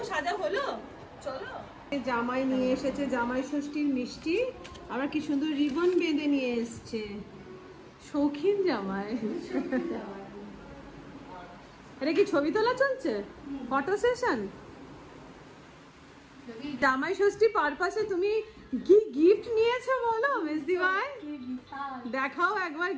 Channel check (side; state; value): both; identical; correlation 1.00